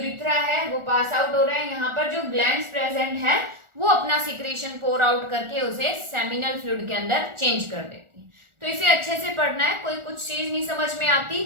है वो पास आउट हो रहा है। यहाँ पर जो ग्लैंड्स प्रेजेंट है वो अपना सिक्रेशन पोर आउट करके उसे सेमिनल फ्लूइड के अंदर चेंज कर देती है। तो इसे अच्छे से पढ़ना है, कोई कुछ चीज नहीं समझ में आती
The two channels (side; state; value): left; late; 1.4 ms